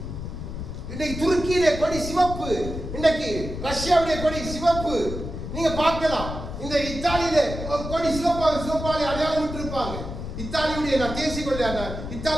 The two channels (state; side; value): noise; left; rumble, 7 dB below the sound